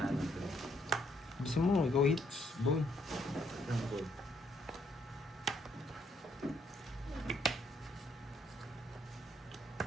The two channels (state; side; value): normal; both; correlation 0.70